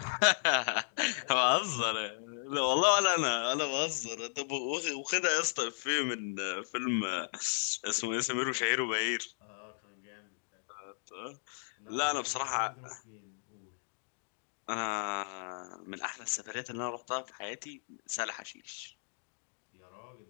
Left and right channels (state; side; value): silent; right; digital silence